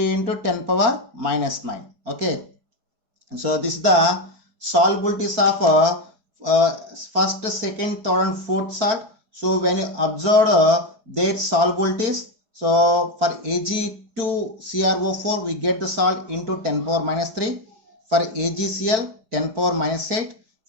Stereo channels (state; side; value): late; left; 4.5 ms